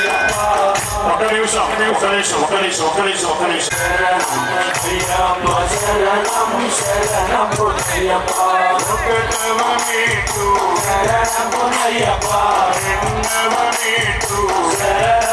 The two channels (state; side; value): identical; both; correlation 1.00